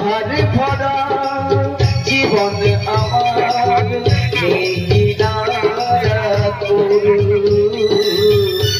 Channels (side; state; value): both; identical; correlation 1.00